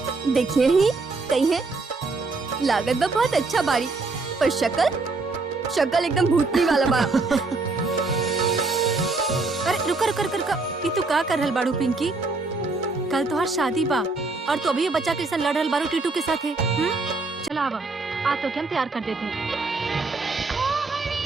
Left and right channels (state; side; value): quieter; left; 3.7 dB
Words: देखिए ही कही है, लागत बा बहुत अच्छा बाड़ी, पर शक्ल एकदम भूतनी वाला बा। अरे रुका रुका रुका रुका, ये तू का कर रहल बाड़ू पिंकी? कल तो हर शादी बा और तू अभी ये बच्चा के साथ लड़ रहल बाड़ू टीटू के साथ है। चला आवा, आ तो क्या हम तैयार कर देते हैं।